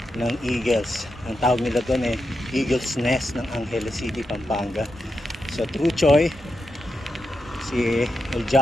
ng Eagles. Ang tawag nila doon Eagles Nest ng Angeles City, Pampanga. So, True Choy, si El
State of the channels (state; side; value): normal; both; correlation 0.87